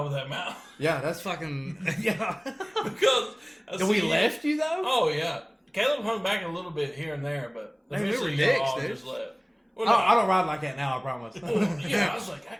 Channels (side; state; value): both; identical; correlation 1.00